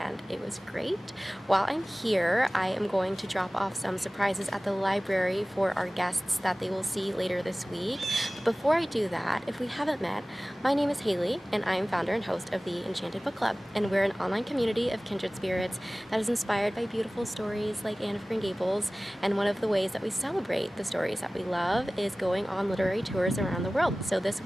it was great. While I'm here, I am going to drop off some surprises at the library for our guests that they will see later this week. But before I do that, if we haven't met, my name is Haley and I am founder and host of the Enchanted Book Club, and we're an online community of kindred spirits that is inspired by beautiful stories like Anne of Green Gables, and one of the ways that we celebrate the stories that we love is going on literary tours around the world. So this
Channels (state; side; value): normal; both; correlation 0.98